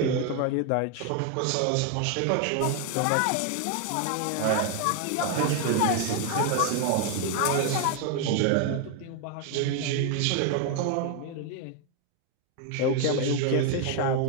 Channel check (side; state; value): both; different; correlation 0.01